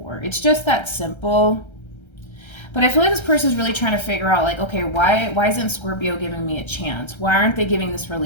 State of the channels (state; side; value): late; right; 1.3 ms